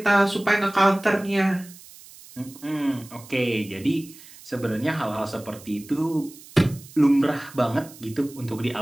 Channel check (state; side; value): noise; right; hiss, 20 dB below the sound